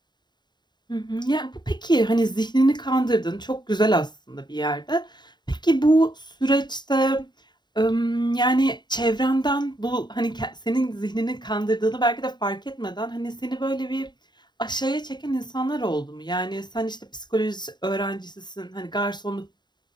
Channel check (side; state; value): right; late; 0.21 ms